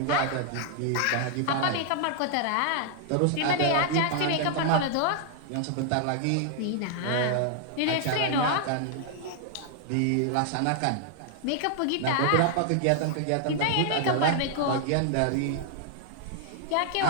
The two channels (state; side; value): different; both; correlation 0.00